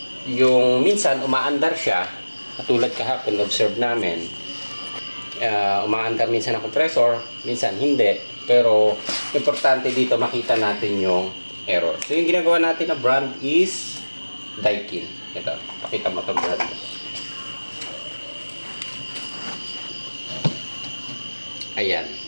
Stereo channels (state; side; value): inverted; both; correlation -1.00